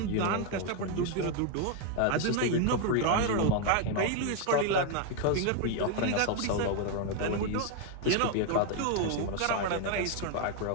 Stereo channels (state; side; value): different; both; correlation 0.01